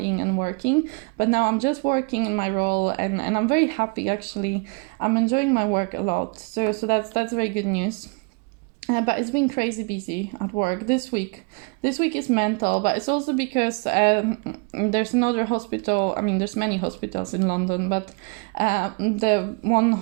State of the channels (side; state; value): left; quieter; 32.8 dB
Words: and working, but now I'm just working in my role, and I'm very happy, actually. I'm enjoying my work a lot. So that's very good news. But it's been crazy busy at work this week. This week is mental, but it's also because there's another hospital. I mean, there's many hospitals in London, but the one